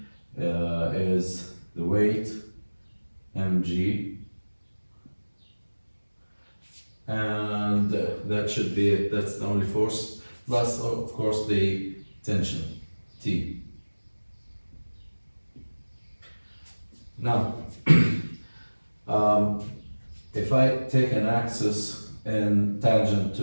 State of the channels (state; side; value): inverted; both; correlation -1.00